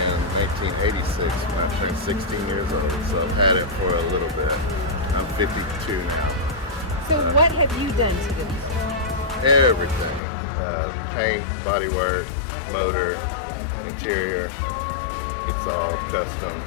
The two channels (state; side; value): drops out; right; at 10.2 s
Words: 1986 when I turned 16 years old, so I've had it for a little bit. I'm 52 now. So what have you done to it? Everything. Paint, bodywork, motor, interior, it's all custom.